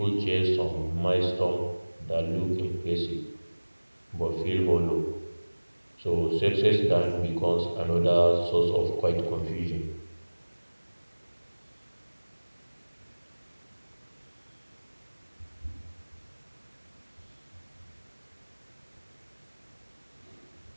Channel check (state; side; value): inverted; both; correlation -1.00